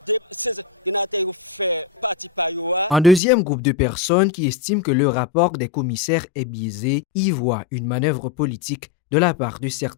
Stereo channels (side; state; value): right; drops out; at 3.2 s